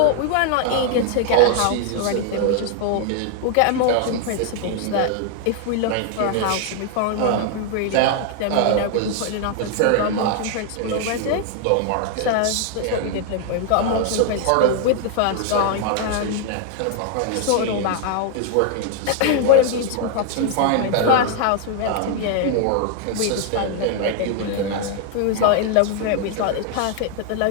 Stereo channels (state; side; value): different; both; correlation 0.00